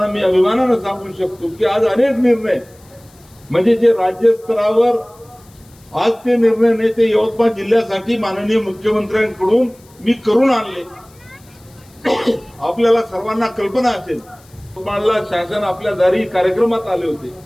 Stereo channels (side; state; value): left; noise; hiss, 28 dB below the sound